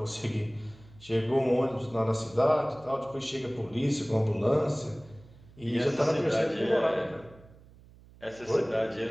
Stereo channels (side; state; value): right; noise; hum, 23 dB below the sound